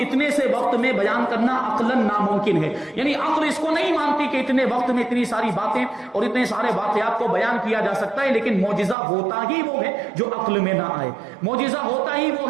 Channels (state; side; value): drops out; left; at 9.0 s